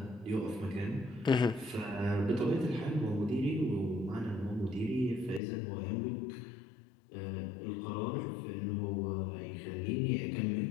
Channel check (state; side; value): drops out; right; at 5.4 s